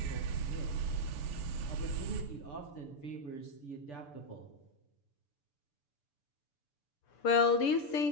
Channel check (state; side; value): late; right; 6.9 ms